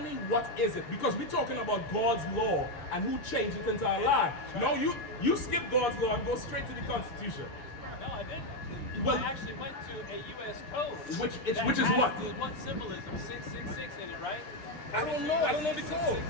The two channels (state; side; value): late; right; 6.7 ms